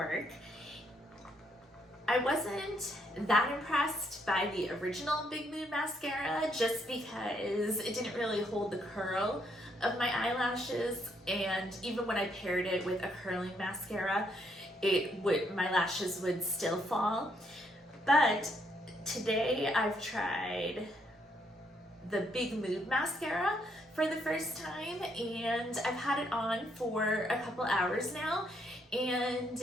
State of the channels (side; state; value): both; normal; correlation 0.73